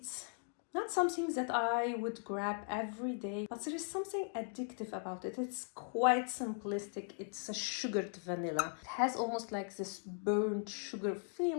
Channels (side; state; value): right; silent; 52 dB below the other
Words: not something that I would grab every day, but there is something addictive about it. It's quite simplistic. It's a sugared vanilla. It has almost like this burnt sugar